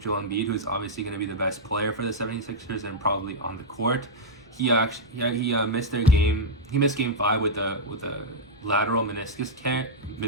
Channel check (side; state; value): both; normal; correlation -0.04